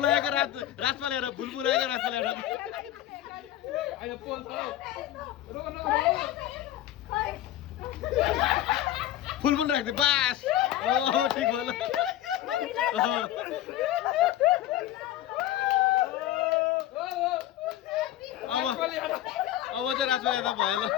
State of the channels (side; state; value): right; quieter; 13.0 dB